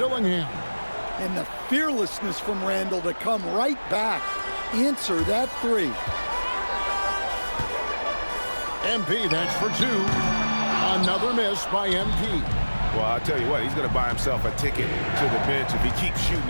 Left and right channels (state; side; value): inverted; both; correlation -1.00